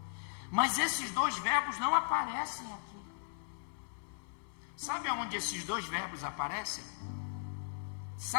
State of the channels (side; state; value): right; silent; 53 dB below the other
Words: Mas esses 2 verbos não aparecem aqui. Sabe aonde esses 2 verbos aparecem?